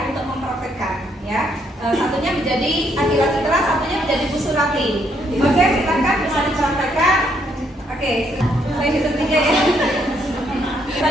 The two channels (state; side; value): normal; both; correlation 0.72